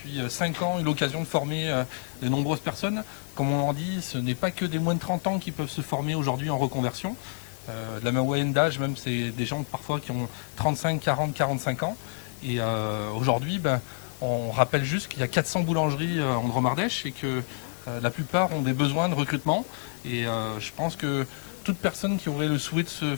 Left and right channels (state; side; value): silent; right; 59 dB below the other